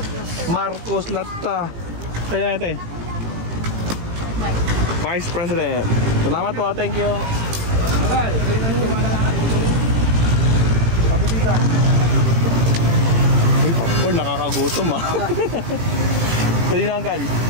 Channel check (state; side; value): late; left; 18 ms